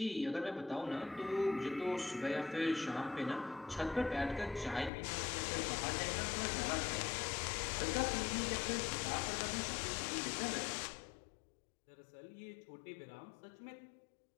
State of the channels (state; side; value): drops out; right; at 4.9 s